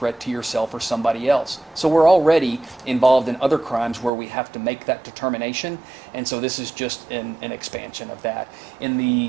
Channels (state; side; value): drops out; left; at 4.1 s